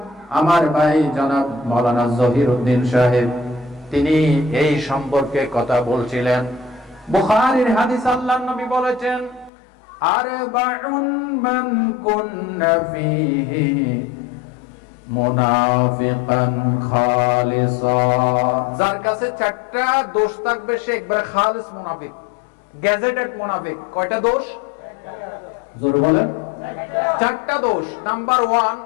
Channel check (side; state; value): right; drops out; at 9.5 s